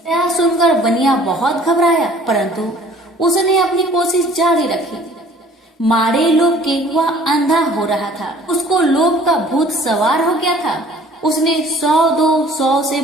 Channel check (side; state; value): both; normal; correlation 0.53